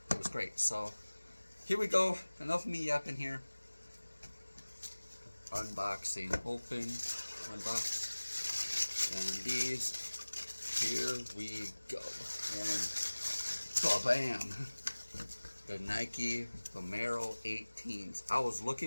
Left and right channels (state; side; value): inverted; both; correlation -1.00